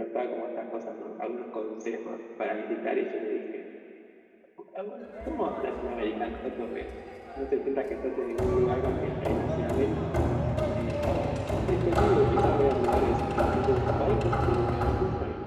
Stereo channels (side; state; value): both; identical; correlation 1.00